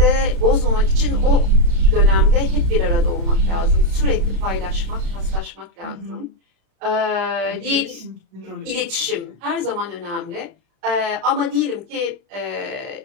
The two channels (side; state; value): left; late; 35 ms